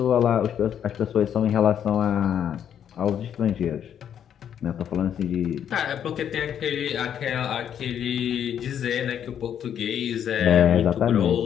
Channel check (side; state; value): right; quieter; 9.2 dB